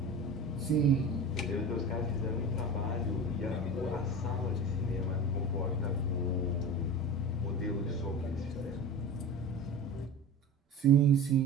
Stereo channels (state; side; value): normal; both; correlation 0.32